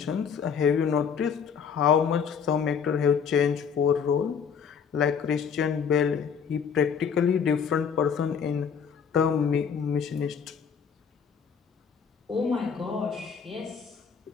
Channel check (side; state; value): right; quieter; 6.9 dB